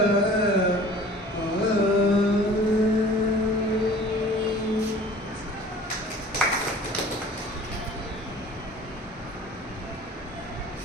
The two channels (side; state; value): both; normal; correlation 0.47